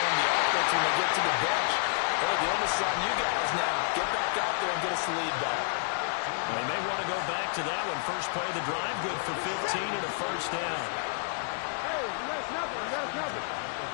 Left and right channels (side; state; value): right; silent; digital silence